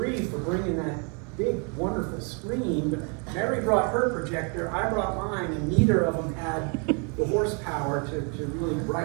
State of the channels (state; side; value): quieter; left; 36.5 dB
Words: for bringing that big, wonderful screen. But Mary brought her projector, I brought mine, and neither of them had the horsepower to really